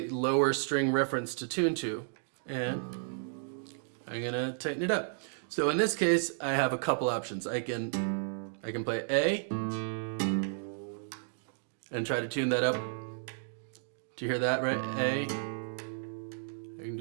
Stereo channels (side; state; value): left; silent; digital silence